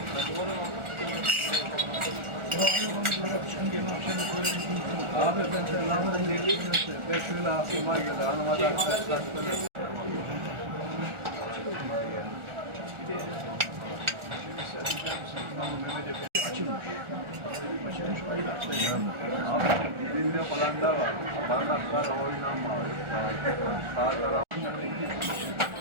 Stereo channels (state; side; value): late; left; 1.4 ms